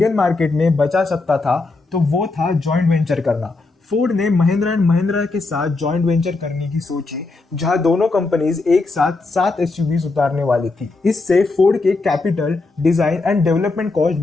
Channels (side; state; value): right; quieter; 3.5 dB